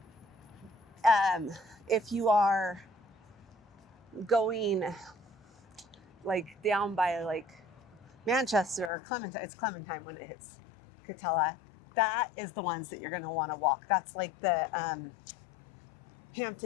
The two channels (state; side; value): drops out; right; at 8.9 s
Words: If you are going like down by like Manchester or Clementine, it's Clementine when it hits Katella, that is the ones that you're going to want to walk. That's like the